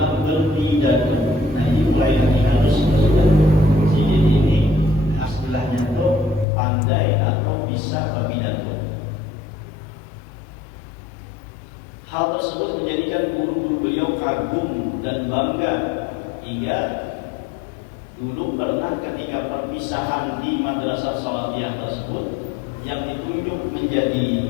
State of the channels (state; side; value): drops out; right; at 6.5 s